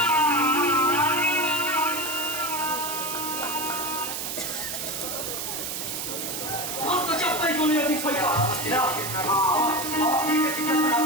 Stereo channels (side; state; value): right; noise; hiss, 4 dB below the sound